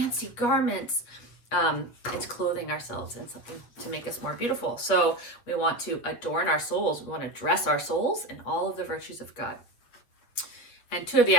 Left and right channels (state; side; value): late; right; 8.2 ms